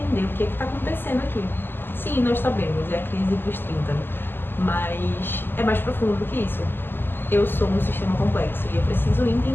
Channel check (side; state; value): right; late; 0.098 ms